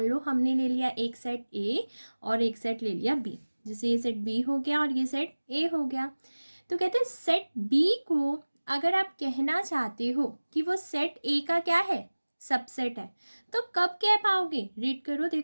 लो हमने ले लिया एक सेट ए और एक सेट ले लिया बी। जैसे ये सेट बी हो गया और ये सेट ए हो गया। तो कहते हैं सेट बी को अगर आप कहना चाहते हो कि वो सेट ए का क्या है, सबसेट है, तो कब कह पाओगे? रीड करो,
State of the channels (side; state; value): both; inverted; correlation -1.00